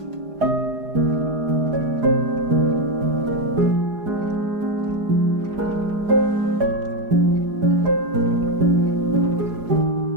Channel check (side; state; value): left; late; 4.9 ms